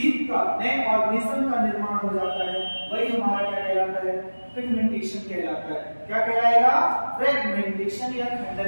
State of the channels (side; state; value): both; inverted; correlation -1.00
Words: का, नए ऑर्गेनिज्म का निर्माण हो जाता है। वही हमारा क्या कहलाता है? फ्रेगमेंटेशन कहलाता है। क्या कहलाएगा? फ्रेगमेंटेशन या